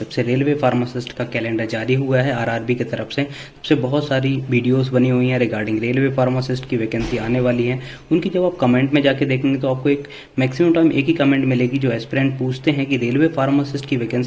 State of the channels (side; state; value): both; identical; correlation 1.00